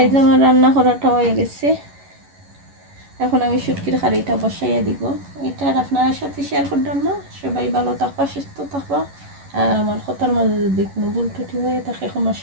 আমার রান্না করাটা হয়ে গেছে। এখন আমি শুটকির হাঁড়িটা বসাইয়া দিব। এটা আর আপনার সাথে শেয়ার করলাম না। সবাই ভালো থাকবা, সুস্থ থাকবা। আর আমার কথার মাঝে যদি কোনো ভুল ত্রুটি হয়ে থাকে ক্ষমা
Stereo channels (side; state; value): left; late; 11 ms